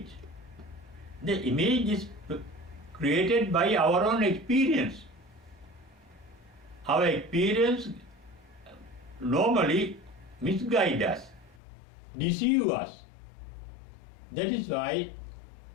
The image is created by our own experience. Our experience normally misguide us, deceive us. That is why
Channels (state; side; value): drops out; right; at 11.6 s